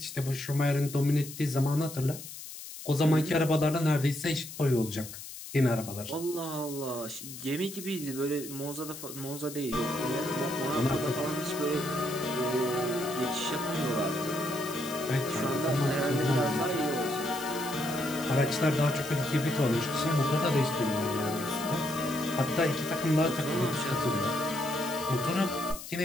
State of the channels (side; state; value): left; noise; hiss, 12 dB below the sound